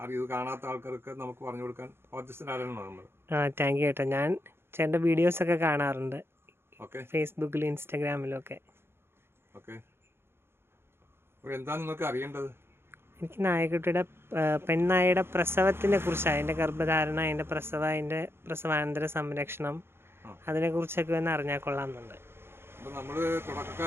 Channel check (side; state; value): left; late; 0.11 ms